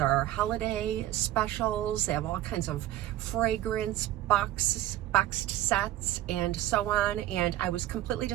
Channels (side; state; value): left; quieter; 14.1 dB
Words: holiday specials. They have all kinds of fragrance boxed sets and so on, and I was completely